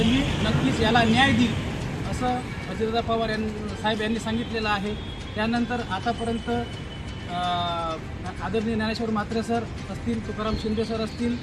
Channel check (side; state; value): both; identical; correlation 1.00